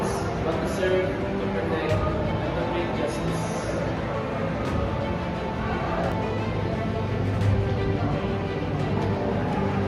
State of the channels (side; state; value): both; identical; correlation 1.00